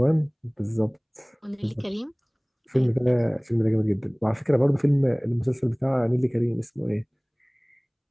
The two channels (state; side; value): identical; both; correlation 1.00